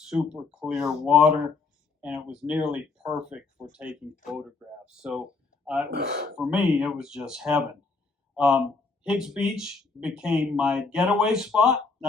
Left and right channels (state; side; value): quieter; right; 4.2 dB